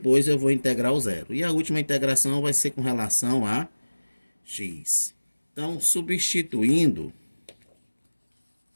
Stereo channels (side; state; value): both; inverted; correlation -1.00